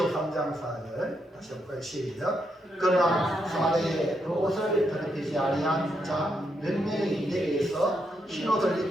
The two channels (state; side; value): normal; both; correlation 0.80